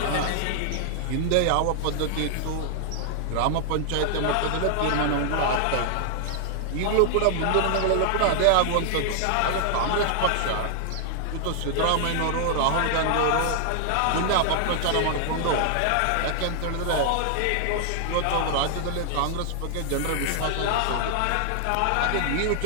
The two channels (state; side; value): different; both; correlation 0.00